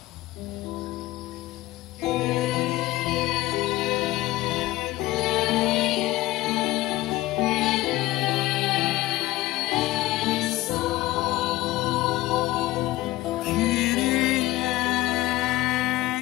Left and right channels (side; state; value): right; quieter; 17.3 dB